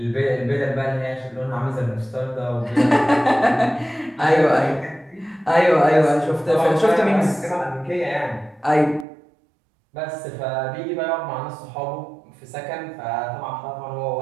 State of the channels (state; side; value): drops out; left; at 9.1 s